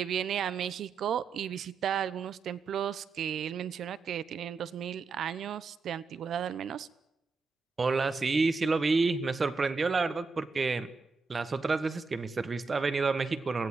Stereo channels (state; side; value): quieter; left; 4.6 dB